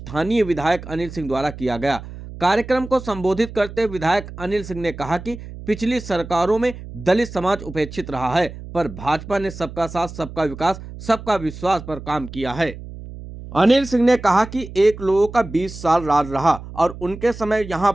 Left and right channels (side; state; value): right; noise; hum, 13 dB below the sound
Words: विधायक अनिल सिंह द्वारा किया गया। कार्यक्रम को संबोधित करते हुए विधायक अनिल सिंह ने कहा कि पिछली सरकारों में दलित समाज उपेक्षित रहा है, पर भाजपा ने सबका साथ, सबका विकास, सबका विश्वास पर काम किया है। अनिल सिंह ने कहा कि एक लोगों का 20 साल राज रहा और उनके समय